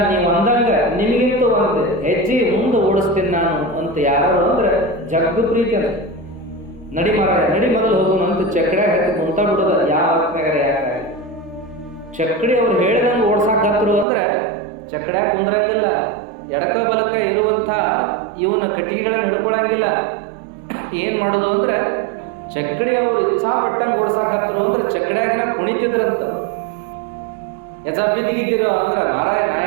ನೀವು ಅಂದಂಗ ನಿಮಗಿಂತ ಒಂದು ಹೆಜ್ಜೆ ಮುಂದೆ ಓಡಿಸ್ತೀನಿ ನಾನು ಅಂತ ಯಾರು ಅಂದ್ರೆ ಜಗ್ಗ ಪ್ರೀತಿ ಅಂತ. ನಡಿ ಮಾರಾಯ ನಡಿ ಮೊದಲು ಹೋಗೋಣ ಅಂತ ಚಕ್ಕಡಿ ಹತ್ತಿ ಮುಂತ ಬಿಡೋದ ಯಾವ ಅರ್ಥನಾಗರ ಯಾಕೆ. ಚಕ್ಕಡಿ ಅವ್ರು ಹೇಳಿದಂಗೆ ಓಡ್ಸಾಕತ್ರು ಅಂದ್ರೆ ಚಕ್ಕಡ್ಯಾಗ ಕುಂದ್ರಂಗಿಲ್ಲ, ಎಡಕ ಬಲಕ ಇರುವಂಥ ಇವನ ಕಟ್ಟಿಗೆಗಳನ್ನ ಹಿಡ್ಕೊಳಂಗಿಲ್ಲ. ಏನ್ ಮಾಡೋದು ಅಂದ್ರೆ ಚಕ್ಕಡಿ ಅವರು ಇಚ್ಛಾ ಪಟ್ಟಂಗೆ ಓಡ್ಸಾಕತ್ರು ಅಂದ್ರೆ ಚಕ್ಕಡ್ಯಾಗ ಕುಣಿತಿದ್ರಂತ. ಯಜ ಬಿದ್ದಿದ್ದೀರೋ ಅಂದ್ರೆ ಮಾರಾಯ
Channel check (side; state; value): left; drops out; at 14.1 s